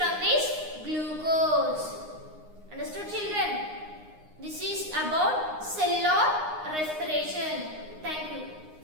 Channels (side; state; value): left; late; 9.7 ms